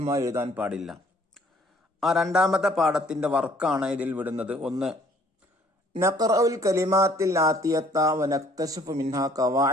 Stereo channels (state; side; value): normal; both; correlation 0.59